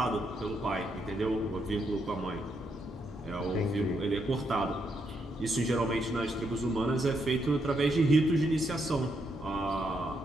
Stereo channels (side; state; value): both; normal; correlation 0.78